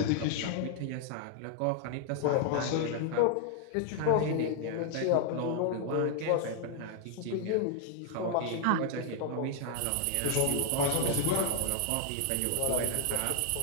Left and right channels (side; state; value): both; different; correlation 0.00